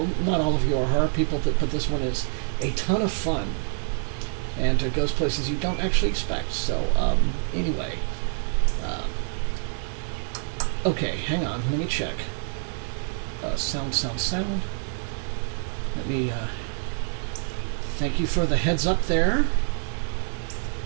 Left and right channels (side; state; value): left; silent; 61 dB below the other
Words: not all of you are horror people, but this one is a ton of fun. And it goes places you don't actually expect. So, anyway. Okay, hang on. Let me check. Sound. Let me, thank you for the heads up there.